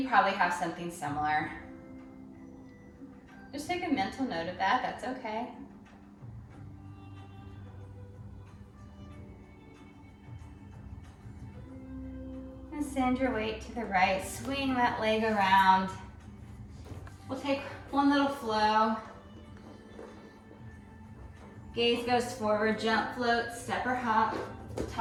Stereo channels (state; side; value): identical; both; correlation 1.00